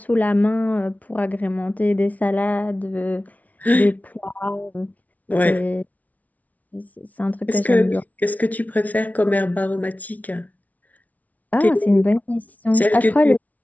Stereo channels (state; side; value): late; right; 0.072 ms